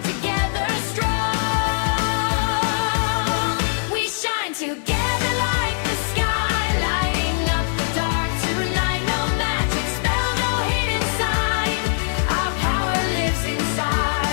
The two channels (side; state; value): right; silent; digital silence